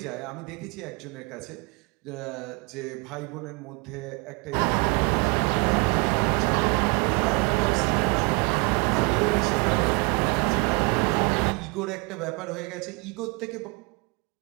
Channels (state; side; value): quieter; left; 30.5 dB